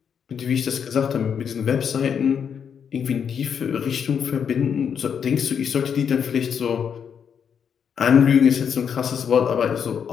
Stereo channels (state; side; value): quieter; right; 7.4 dB